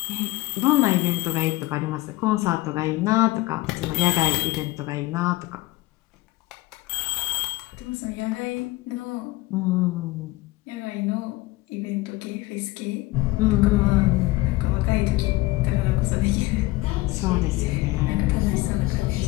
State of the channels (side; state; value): right; quieter; 19.4 dB